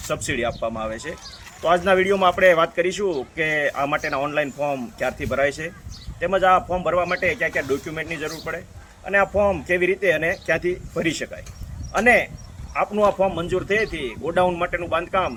આપવામાં આવે છે. તો આજના વિડીયોમાં આપણે વાત કરીશું કે આ માટેના ઓનલાઈન ફોર્મ ક્યારથી ભરાય છે, તેમજ આ ફોર્મ ભરવા માટે ક્યાં ક્યાં ડોક્યુમેન્ટની જરૂર પડે અને આ ફોર્મ કેવી રીતે અને ક્યાંથી ભરી શકાય, અને આપનું આ ફોર્મ મંજૂર થયેથી ગોડાઉન માટેનું બાંધકામ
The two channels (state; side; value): identical; both; correlation 1.00